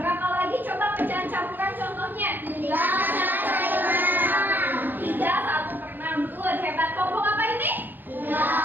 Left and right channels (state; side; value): late; left; 0.090 ms